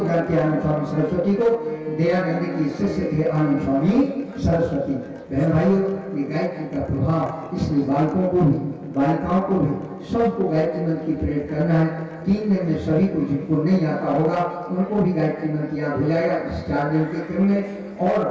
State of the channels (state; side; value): identical; both; correlation 1.00